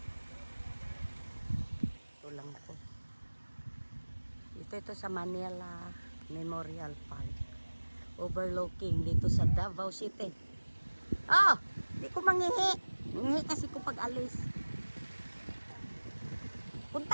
Ito lang po. Ito sa Manila Memorial Park. Overlooking dito sa Davao City. Oh! Di ko manghihi. Manghihi kasi ko pag alis.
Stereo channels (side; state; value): both; inverted; correlation -1.00